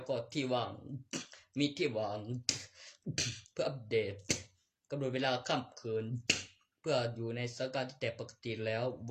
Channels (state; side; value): identical; both; correlation 1.00